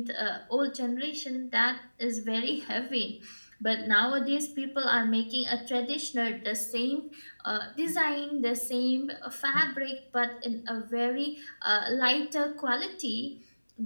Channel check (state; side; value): inverted; both; correlation -1.00